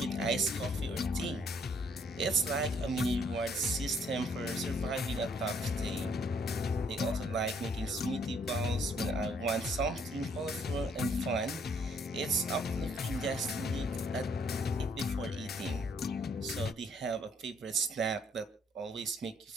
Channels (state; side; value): normal; both; correlation 0.66